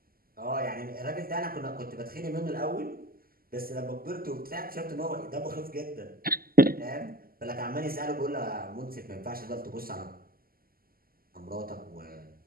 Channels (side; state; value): left; late; 0.42 ms